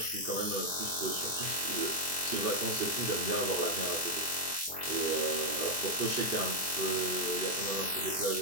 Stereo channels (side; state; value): both; normal; correlation 0.00